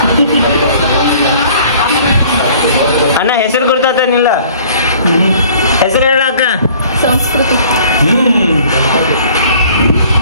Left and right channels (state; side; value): inverted; both; correlation -0.52